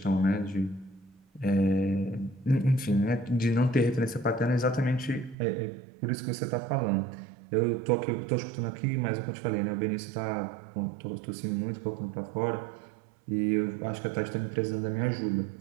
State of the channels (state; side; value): drops out; left; at 5.4 s